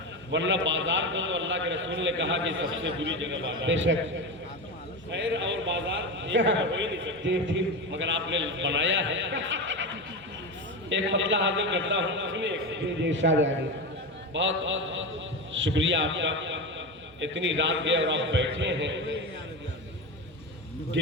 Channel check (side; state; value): both; normal; correlation 0.20